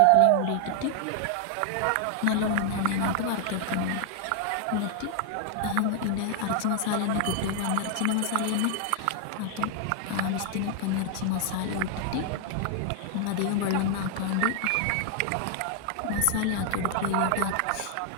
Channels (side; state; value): both; different; correlation 0.00